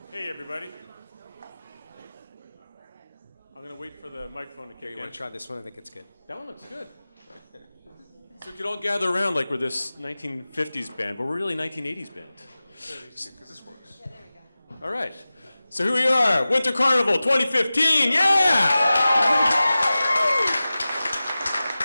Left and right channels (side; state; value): both; inverted; correlation -0.96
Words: Hey, everybody. I'm going to wait for the microphone to kick in. You want to try this one? I think it's good. That one looks good. So we could all gather around like we're this 1950s band, but we're really 1980s band. Because this works. Yeah, there we go. All right. So here we are, Winter Carnival 2015. Yeah!